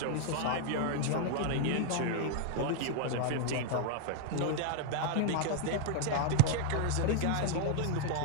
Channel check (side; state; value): both; different; correlation 0.00